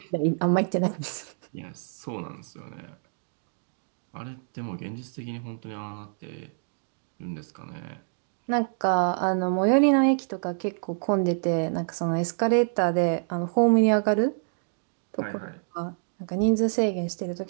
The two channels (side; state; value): left; silent; digital silence